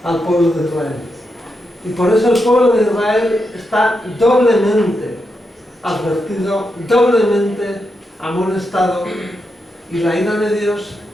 al pueblo de Israel. Y por eso el pueblo de Israel está doblemente advertido, doblemente amonestado, y la ira de Dios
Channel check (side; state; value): both; normal; correlation 0.85